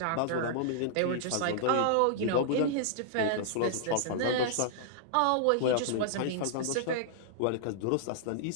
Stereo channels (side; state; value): both; different; correlation -0.01